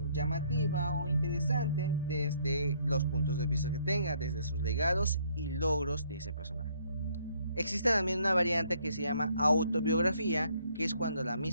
llamativa o interesante desde los puntos de vista que tenga, desde sus legados y logros de ese personaje. Existe también una variante que se llama autobiografía, que es cuando la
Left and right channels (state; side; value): inverted; both; correlation -0.66